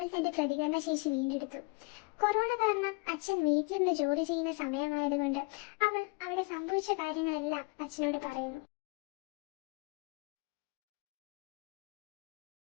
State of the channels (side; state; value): right; quieter; 30.8 dB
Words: തന്റെ പ്രതികരണ ശേഷി വീണ്ടെടുത്തു. കൊറോണ കാരണം അച്ഛൻ വീട്ടിലിരുന്ന് ജോലി ചെയ്യുന്ന സമയമായതുകൊണ്ട് അവൾ അവിടെ സംഭവിച്ച കാര്യങ്ങളെല്ലാം അച്ഛനോട് പറയുന്നു.